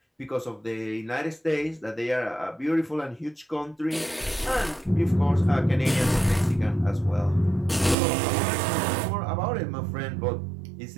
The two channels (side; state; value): left; drops out; at 8.0 s